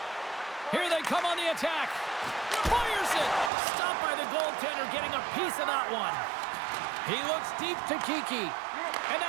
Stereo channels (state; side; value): drops out; left; at 3.5 s